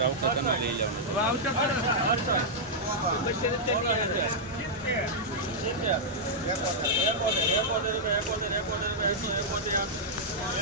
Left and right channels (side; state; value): both; normal; correlation -0.08